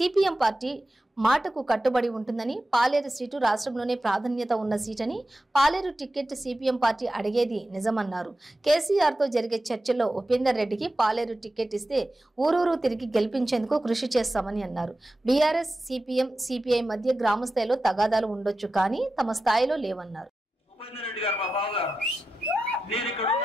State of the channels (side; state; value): both; normal; correlation 0.92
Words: పార్టీ మాటకు కట్టుబడి ఉంటుందని, పాలేరు సీటు రాష్ట్రంలోనే ప్రాధాన్యత ఉన్న సీటని, పాలేరు టికెట్ సిపిఎం పార్టీ అడిగేది నిజమన్నారు. కేసీఆర్తో జరిగే చర్చల్లో ఉపేందర్ రెడ్డికి పాలేరు టికెట్ ఇస్తే ఊరూరు తిరిగి గెలిపించేందుకు కృషి చేస్తామని అన్నారు. బీఆర్ఎస్, సిపిఎం, సిపిఐ మధ్య గ్రామ స్థాయిలో తగాదాలు ఉండొచ్చు, కానీ తమ స్థాయిలో లేవన్నారు. ఉపేందర్ రెడ్డి గారు మా బావగారు, నేను ఇక్కడ